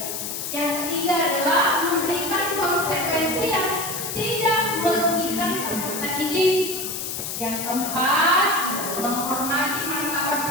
Yang ketiga adalah memberikan konsekuensi yang tidak merugikan peserta didik. Yang keempat, menghormati martabat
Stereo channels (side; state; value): left; noise; hiss, 5 dB below the sound